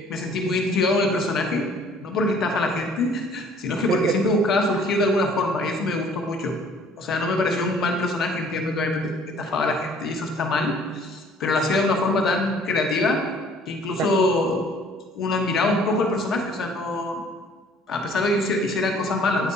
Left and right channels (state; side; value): normal; both; correlation 0.56